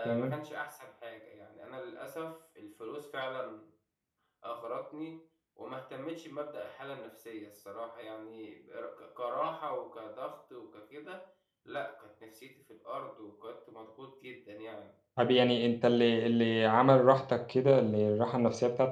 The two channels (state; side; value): identical; both; correlation 1.00